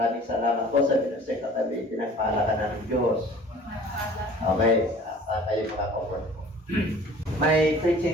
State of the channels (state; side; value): normal; both; correlation 0.48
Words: salamat po sa binusay katabi. Pinagpahalakan ng Diyos. Okay, kayo makakoport po. My